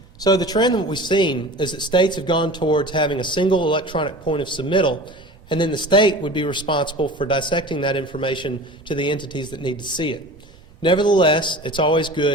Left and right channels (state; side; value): noise; right; rumble, 27 dB below the sound